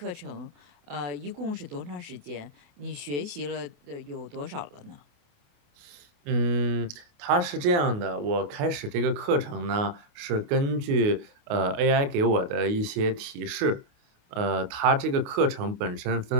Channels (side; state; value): left; late; 28 ms